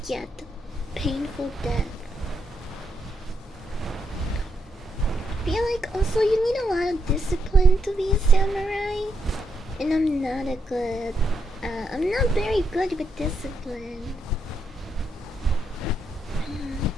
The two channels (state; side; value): normal; both; correlation 0.80